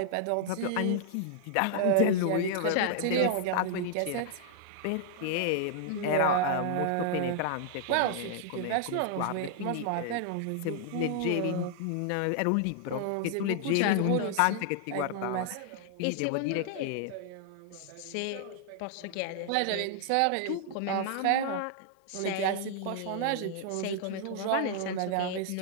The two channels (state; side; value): different; both; correlation -0.01